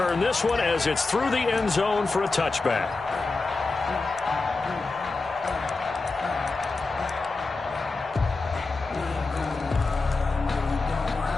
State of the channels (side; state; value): right; quieter; 3.7 dB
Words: this one as it's through the end zone for a touchback.